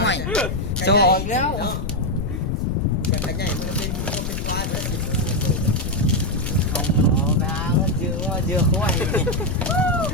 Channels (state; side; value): noise; left; rumble, 3 dB below the sound